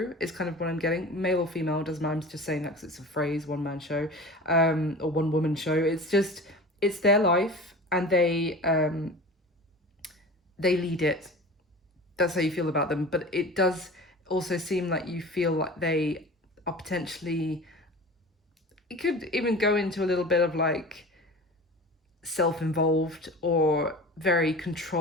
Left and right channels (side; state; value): both; normal; correlation 0.36